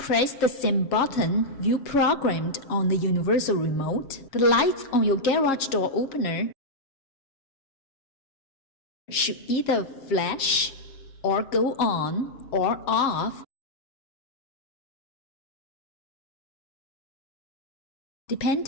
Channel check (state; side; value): late; right; 7.3 ms